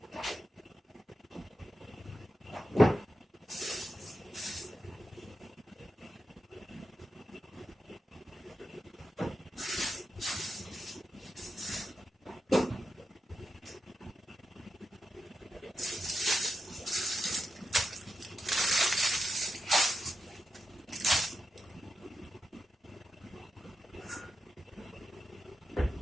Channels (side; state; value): both; normal; correlation 0.89